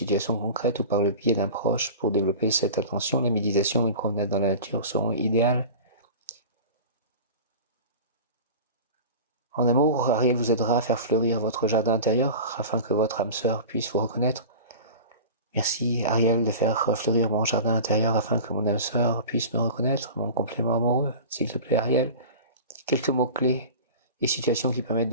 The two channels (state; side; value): inverted; both; correlation -0.34